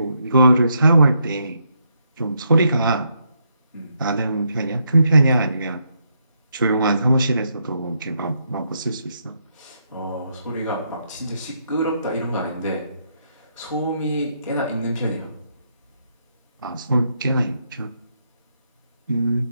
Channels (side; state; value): both; inverted; correlation -0.77